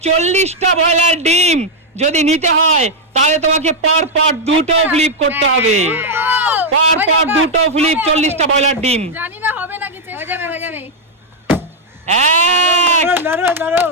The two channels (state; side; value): normal; both; correlation -0.02